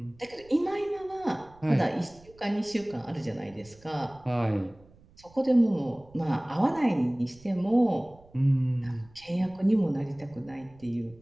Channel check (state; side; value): noise; right; rumble, 26 dB below the sound